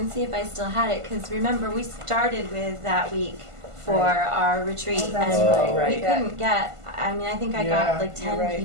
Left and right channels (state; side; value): late; left; 1.5 ms